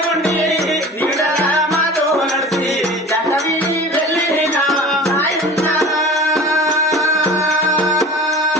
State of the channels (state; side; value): normal; both; correlation 0.38